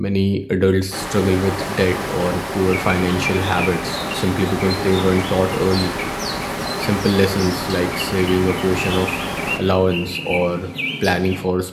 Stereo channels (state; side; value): identical; both; correlation 1.00